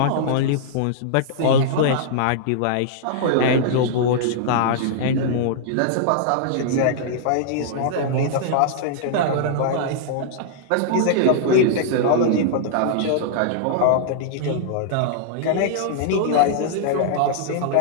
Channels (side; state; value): both; different; correlation -0.01